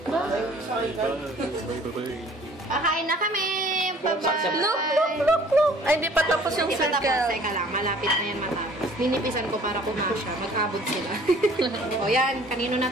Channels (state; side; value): normal; both; correlation 0.53